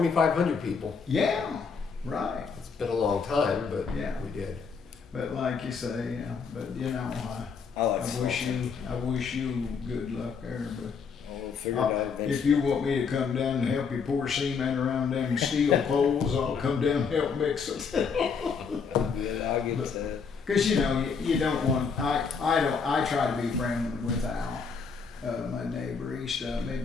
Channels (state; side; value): quieter; right; 5.6 dB